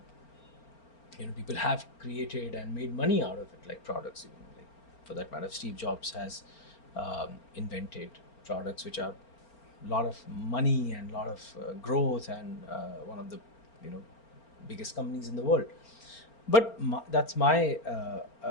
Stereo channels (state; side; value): late; right; 4.4 ms